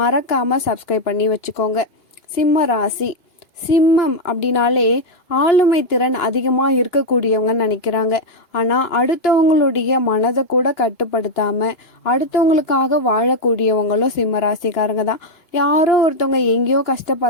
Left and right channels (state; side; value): late; right; 2.9 ms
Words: மறக்காமல் சப்ஸ்கிரைப் பண்ணி வச்சுக்கோங்க. சிம்ம ராசி சிம்மம் அப்படின்னாலே ஆளுமை திறன் அதிகமாக இருக்கக்கூடியவங்கன்னு நினைக்கிறாங்க. ஆனால் அடுத்தவங்களுடைய மனதை கூட கட்டுப்படுத்தாமல் அடுத்தவங்களுக்காக வாழக்கூடியவங்களும் சிம்ம ராசிக்காரங்க தான். யாரோ ஒருத்தவங்க எங்கேயோ